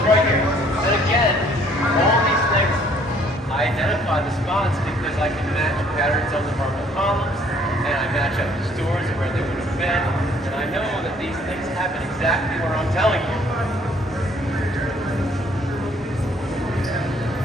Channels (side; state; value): both; normal; correlation 0.61